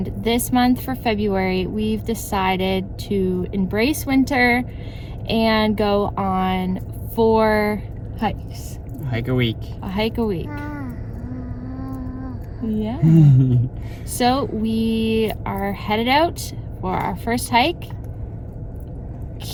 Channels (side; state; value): both; identical; correlation 1.00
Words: this month for February, we've decided to embrace winter and go on 4 hikes. Hike a week. A hike a week. Yeah. So we are headed out for our first hike.